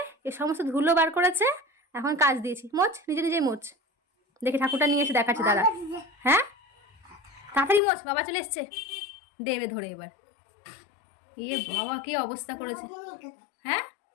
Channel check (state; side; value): drops out; right; at 7.8 s